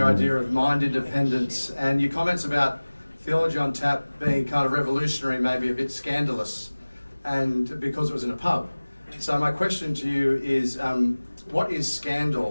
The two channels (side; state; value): both; inverted; correlation -1.00